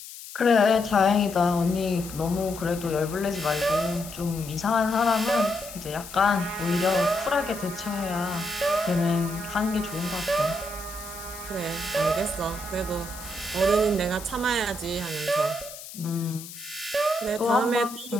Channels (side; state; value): left; noise; hiss, 14 dB below the sound